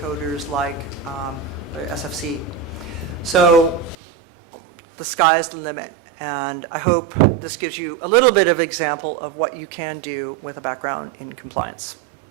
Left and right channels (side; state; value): left; drops out; at 4.0 s